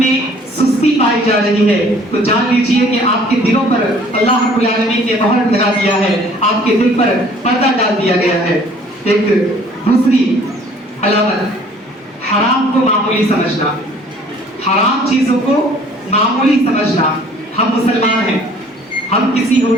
सुस्ती पाई जा रही है तो जान लीजिए कि आपके दिलों पर अल्लाह रब्बुल आलमीन ने मोहर लगा दिया है, आपके दिल पर पर्दा डाल दिया गया है। एक दूसरी अलामत, हराम को मामूली समझना, हराम चीजों को मामूली समझना। हम मुसलमान हैं, हम किसी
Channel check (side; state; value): both; normal; correlation 0.55